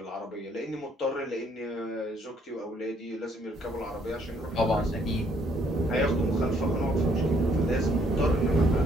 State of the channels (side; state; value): both; normal; correlation 0.66